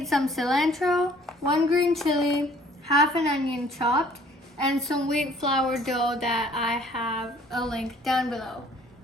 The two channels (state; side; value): normal; both; correlation 0.56